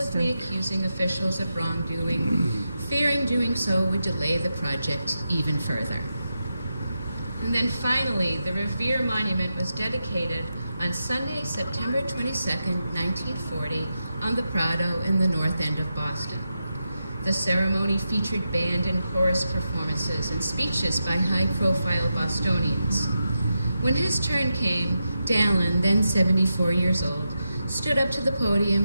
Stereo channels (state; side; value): inverted; both; correlation -0.88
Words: accusing officials of wrongdoing, fearing doing so would delay the project even further. And then finally, the Revere Monument was dedicated on Sunday, September 22nd, 1940, on the Prado in the North End of Boston. The ceremony featured band and chorus performances and speeches by high-profile Bostonians. When his turn came, Dallin, then 74 years old, stood up to the